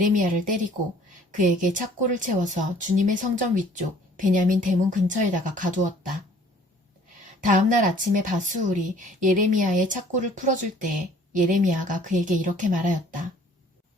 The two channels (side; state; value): both; normal; correlation 0.55